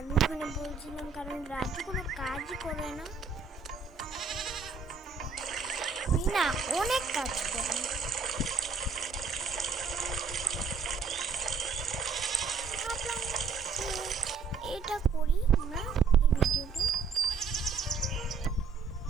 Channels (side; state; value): left; quieter; 5.1 dB